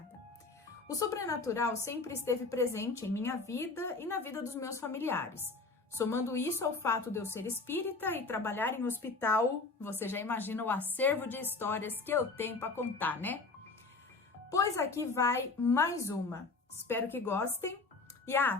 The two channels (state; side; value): quieter; right; 3.8 dB